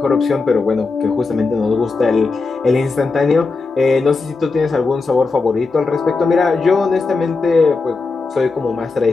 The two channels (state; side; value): quieter; right; 4.1 dB